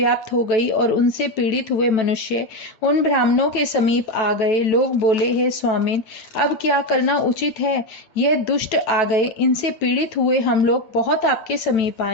हो गई और उनसे पीड़ित हुए मनुष्य उन ब्राह्मणों के समीप आ गए। लोग बोले, हे स्वामिन, अब क्या करना उचित है? यह दुष्ट आ गए, इनसे पीड़ित हुए हम लोग बहुत आपके समीप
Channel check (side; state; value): right; late; 9.1 ms